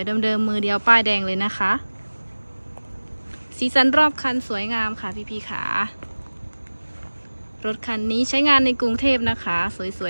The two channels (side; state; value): both; inverted; correlation -1.00